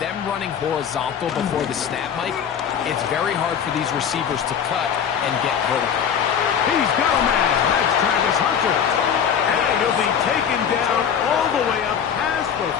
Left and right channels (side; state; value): right; quieter; 8.0 dB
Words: running horizontal before the snap, Mike, it's very hard for these receivers to cut and get vertical. He's got a man. That's Travis Hunter. And he'll be taken down all the way up past the